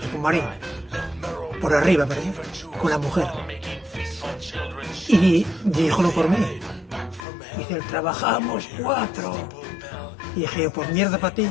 Pumarín, por arriba, ¿verdad? Con la mujer. Y díjolo por mí. Dice, trabajamos 4. Y dije yo, pues mierda para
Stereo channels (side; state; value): right; drops out; at 7.2 s